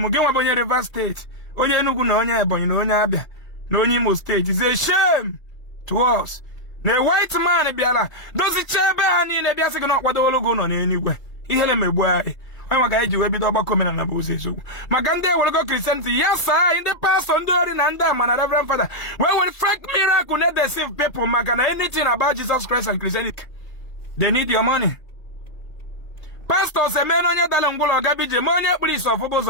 gị nwa bụ onye Rivers State onye Enugu na onye Ebonyi na onye Abia na onye Imo State is a shame to us na white man bịala dozicha ebe ha niile bịa sị gị na ọkwadowolo gị nọ n'eluigwe ihere megbu anyị onye maka anyị ji wee bido ọgbakọ omenala bụ ụzọ eziokwu maka ndị ewelego Christianity ya saa anyị ndị pastọ ndị ori na ndị ama na Reverend Father wee were fake miracle na deceive people maka na anything about Jesus Christ and Christianity they need your money. Pastors emena onye dala ngwụlọ gabije ma onye kpụrụ isi ọfụbụ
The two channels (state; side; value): late; right; 2.3 ms